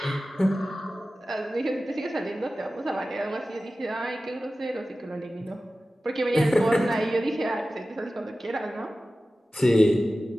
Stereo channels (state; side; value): normal; both; correlation 0.95